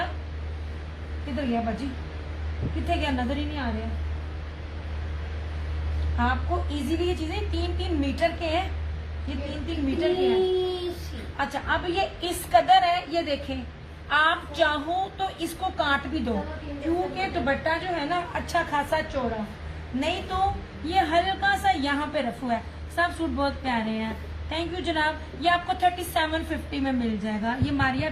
किधर गया बाजी? कितने गया? नजर ही नहीं आ रहा। आपको इजीली ये चीजें 3-3 मीटर के हैं। ये 3-3 मीटर के हैं। अच्छा अब ये इस कदर है, ये देखें। आप चाहो तो इसको काट भी दो, क्योंकि दुपट्टा जो है ना अच्छा खासा चौड़ा, नहीं तो ये हल्का सा यहाँ पे रफू है। सब सूट बहुत प्यारे हैं। थैंक यू जनाब। ये आपको 3750 में मिल जाएगा। ये मारिया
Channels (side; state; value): both; identical; correlation 1.00